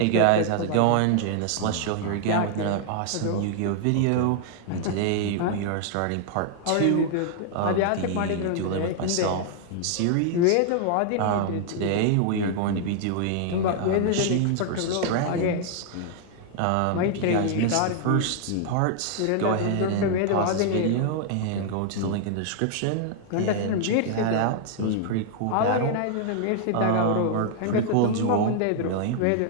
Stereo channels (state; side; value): different; both; correlation -0.01